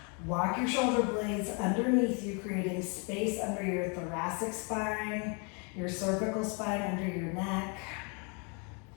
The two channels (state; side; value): quieter; right; 35.1 dB